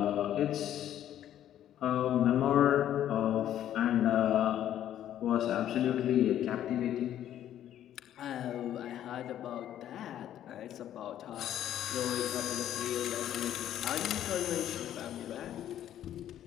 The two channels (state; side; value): quieter; right; 11.3 dB